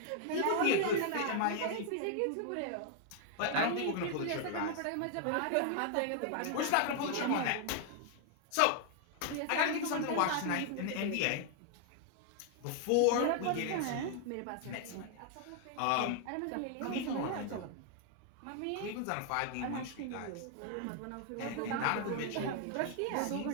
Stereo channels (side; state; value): both; different; correlation 0.00